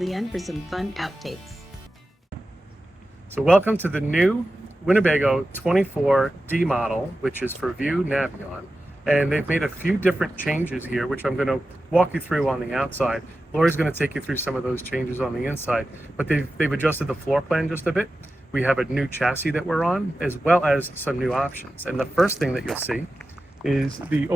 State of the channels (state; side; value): normal; both; correlation 0.93